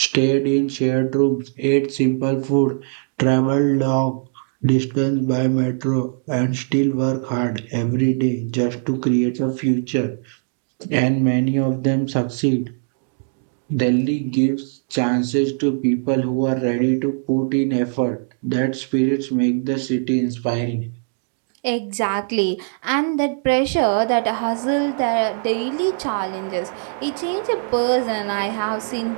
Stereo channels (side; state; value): left; silent; digital silence